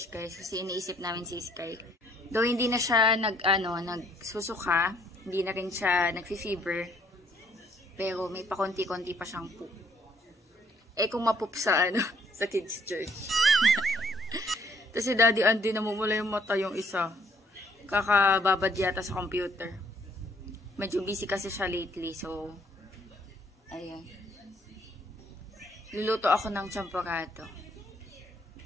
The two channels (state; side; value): normal; both; correlation 0.64